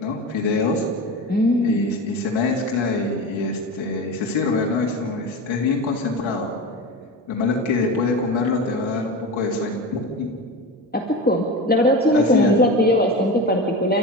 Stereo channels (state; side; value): normal; both; correlation 0.26